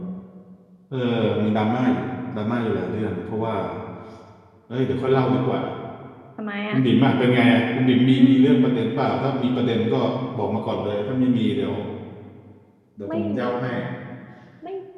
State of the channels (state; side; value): identical; both; correlation 1.00